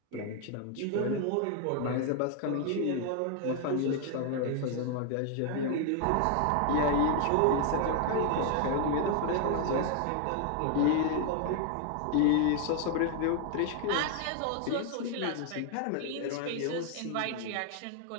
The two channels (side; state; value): both; different; correlation 0.00